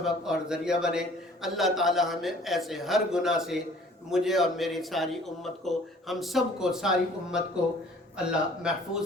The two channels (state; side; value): normal; both; correlation 0.53